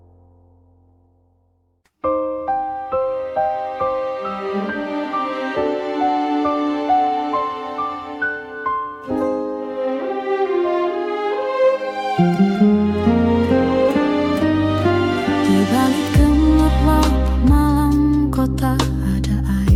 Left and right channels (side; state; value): both; identical; correlation 1.00